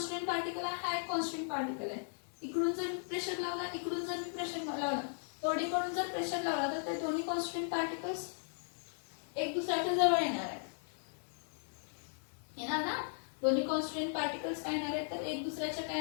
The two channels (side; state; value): right; silent; digital silence